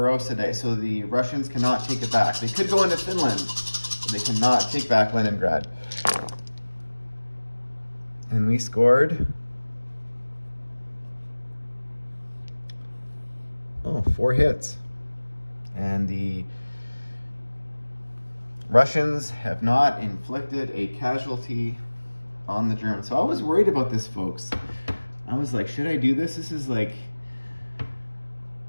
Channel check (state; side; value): inverted; both; correlation -1.00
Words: Day, so the Russians cannot take it back. They could go into Finland, but they cannot take back Leningrad. And we scored 4 hits. And the Russians have not inflicted a casualty on the Germans. So I was worried about this, folks. I was like, should I do this? This is like